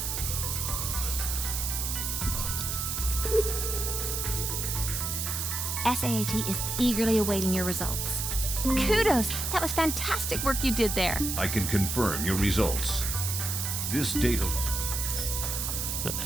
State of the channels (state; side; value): noise; right; hiss, 2 dB below the sound